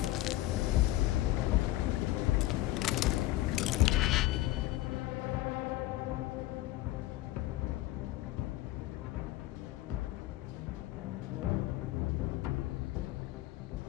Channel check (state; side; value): quieter; right; 16.4 dB